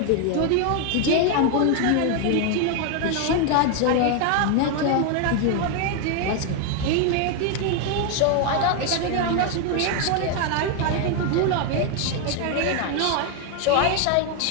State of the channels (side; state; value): both; different; correlation 0.01